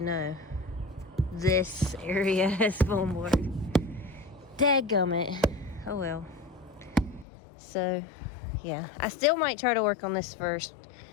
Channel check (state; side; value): drops out; right; at 7.2 s